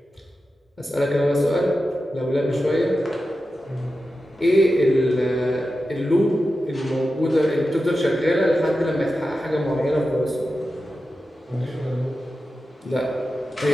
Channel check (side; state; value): both; normal; correlation 0.92